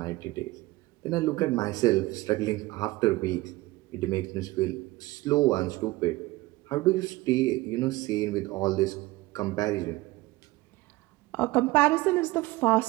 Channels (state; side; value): quieter; left; 19.7 dB